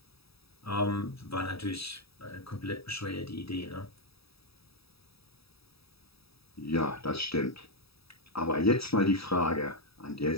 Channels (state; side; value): late; right; 0.77 ms